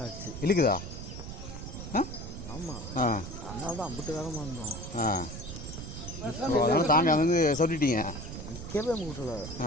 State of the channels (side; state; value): right; noise; rumble, 9 dB below the sound